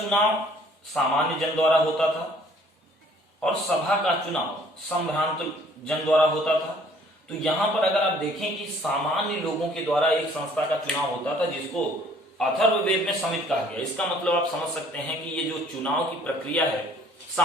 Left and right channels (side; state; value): both; normal; correlation 0.58